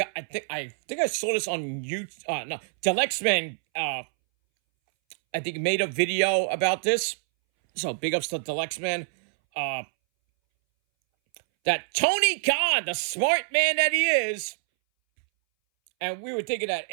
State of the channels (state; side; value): silent; left; 61 dB below the other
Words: I saw this on YouTube. No, Delexman, I think made a video about this. So big ups to Delexman. That Tony Khan, the smart man that he is, and we were thinking that